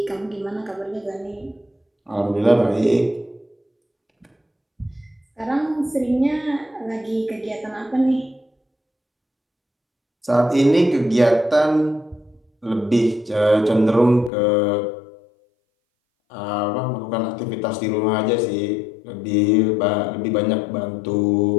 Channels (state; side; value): drops out; right; at 14.3 s